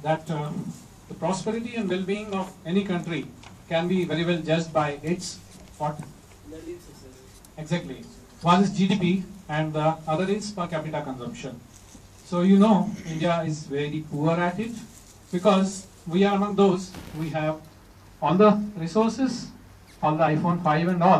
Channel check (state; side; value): identical; both; correlation 1.00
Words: that the prosperity and well-being of any country can be very well judged by its what? Exactly. One is GDP and the other is per capita consumption. So you know India is very poor at it because we are among those, we have all the resources, all the iPhone 5 and